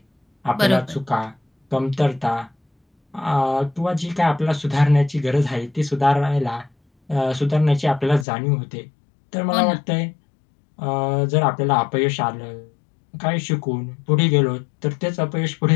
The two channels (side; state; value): right; drops out; at 8.2 s